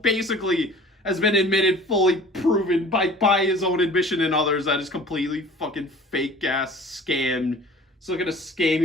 has been admitted, fully proven by his own admission and others that is completely fucking fake ass scam. It's looking to scam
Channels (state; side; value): normal; both; correlation 0.45